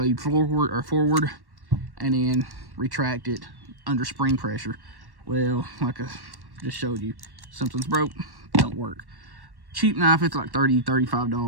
forward and then retract it under spring pressure. Well, like I just showed you, something's broke, don't work. Cheap knife, it's like $30,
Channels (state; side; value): late; left; 1.1 ms